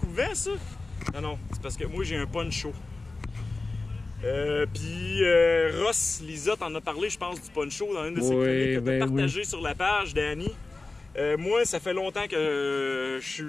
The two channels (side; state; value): right; quieter; 3.4 dB